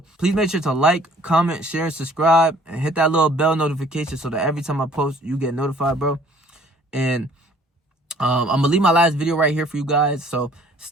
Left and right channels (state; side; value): normal; both; correlation 0.56